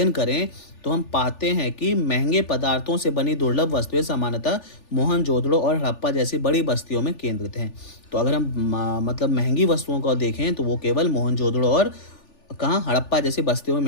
करें, तो हम पाते हैं कि महंगे पदार्थों से बनी दुर्लभ वस्तुएं सामान्यतः मोहनजोदड़ो और हड़प्पा जैसी बड़ी बस्तियों में केंद्रित हैं। तो अगर हम मतलब महंगी वस्तुओं को देखें तो वो केवल मोहनजोदड़ो और कहाँ, हड़प्पा जैसी बस्तियों में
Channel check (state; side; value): late; right; 3.4 ms